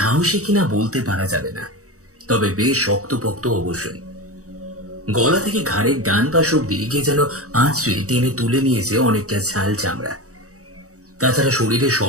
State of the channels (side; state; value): left; late; 0.65 ms